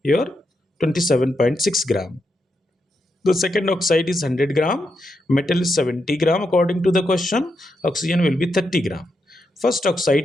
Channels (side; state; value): both; normal; correlation 0.83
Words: your 27.6 gram. The second oxide is 100 gram, metal is 70 gram according to the question, oxygen will be 30 gram. First